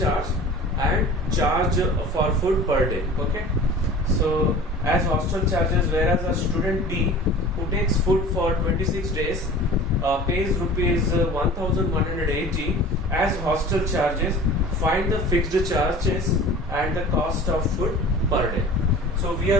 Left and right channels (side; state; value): both; normal; correlation 0.41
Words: charge and charge for food per day. Okay. So as hostel charges, whereas a student B who takes food for 26 days pays rupees 1180 as hostel charges, find the fixed charges and the cost of food per day. So we